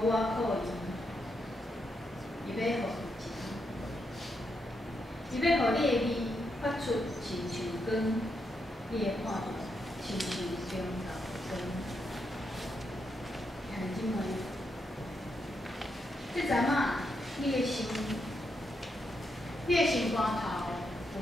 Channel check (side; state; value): both; normal; correlation 0.82